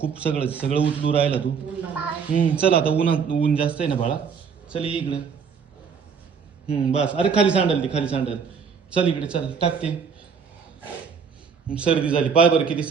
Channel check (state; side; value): quieter; left; 6.3 dB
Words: सगळं उचलू राहिला तू. चल आता ऊन जास्त आहे ना बाळा. चल ये इकडं. बस. अरे खाली सांडल. चल इकडे चल टाकते. सर्दी झाली पाय बरं किती